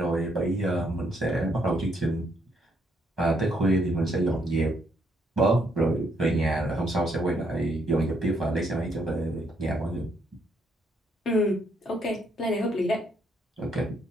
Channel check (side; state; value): both; normal; correlation 0.73